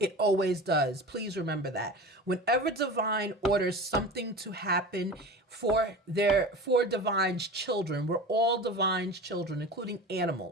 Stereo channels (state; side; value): normal; both; correlation 0.33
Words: always does. Please remember that. Whenever divine orders something to happen for divine's children, we're all divine's children, including